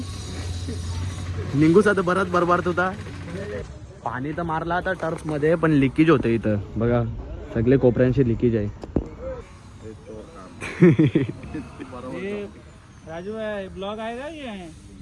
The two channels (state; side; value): identical; both; correlation 1.00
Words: निघूस आता बराच बरबार होता. पाणी तर मारला आता टर्फ मध्ये, पण लिकेज होतं इथं बघा. सगळे कोपऱ्यांशी लिकेज आहे. राजू है ब्लॉग आएगा ये